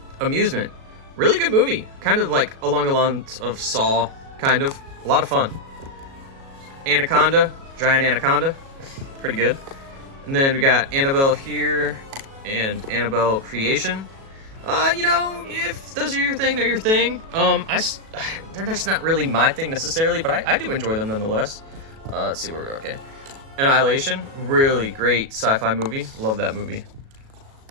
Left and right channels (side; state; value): left; late; 37 ms